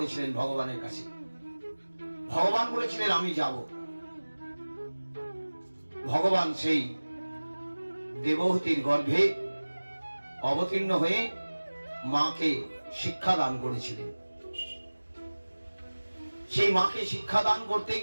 ভগবানের কাছে। ভগবান বলেছিলেন আমি যাব, ভগবান সেই দেবহূতির গর্ভে অবতীর্ণ হয়ে মাকে শিক্ষা দান করেছিলেন। সেই মাকে শিক্ষা দান করতে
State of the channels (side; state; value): both; inverted; correlation -1.00